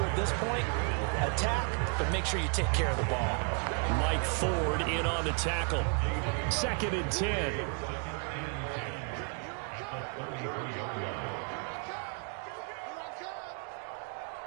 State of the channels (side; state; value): left; quieter; 37.3 dB